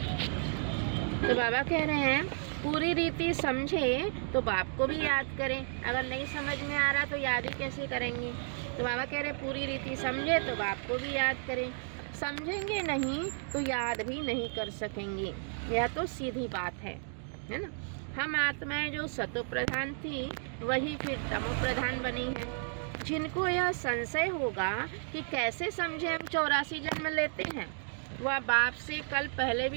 तो बाबा कह रहे हैं पूरी रीति समझे तो बाप को भी याद करें। अगर नहीं समझ में आ रहा तो याद ही कैसे करेंगे। तो बाबा कह रहे पूरी रीति समझे तो बाप को भी याद करें। समझेंगे नहीं तो याद भी नहीं कर सकेंगे। यह तो सीधी बात है ना। हम आत्माएं जो सतो प्रधान थी वही फिर तमो प्रधान बनी है। जिनको यह संशय होगा कि कैसे समझे हम 84 जन्म लेते हैं, वह बाप से कल पहले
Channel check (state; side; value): silent; left; 56 dB below the other